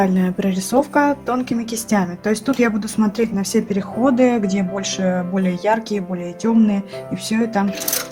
прорисовка тонкими кистями. То есть тут я буду смотреть на все переходы, где больше более яркие, более темные. И все это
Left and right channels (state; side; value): identical; both; correlation 1.00